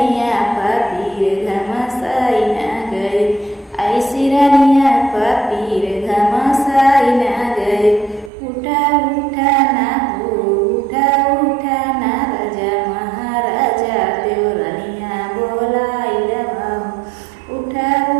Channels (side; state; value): left; drops out; at 8.3 s